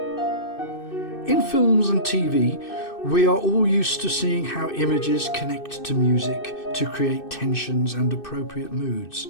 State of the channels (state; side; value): late; right; 2.6 ms